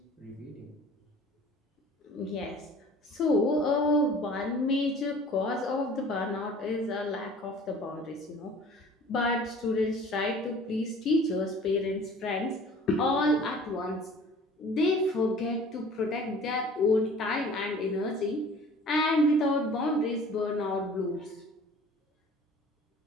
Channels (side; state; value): both; normal; correlation 0.48